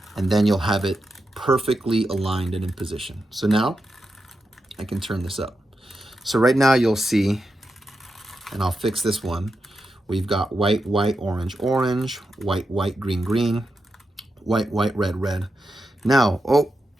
and then you'll have it perfectly aligned and in position. So now I can turn this up. So right now you'll see, and I'll fix this one. We've got white, white, orange, orange, white, white, green, green, white, white, red, red. Now, oh,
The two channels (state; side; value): normal; both; correlation 0.87